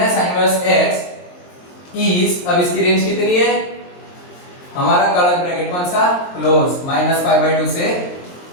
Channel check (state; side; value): late; right; 23 ms